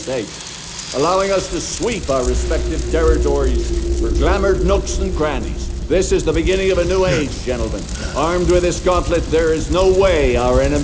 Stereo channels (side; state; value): both; identical; correlation 1.00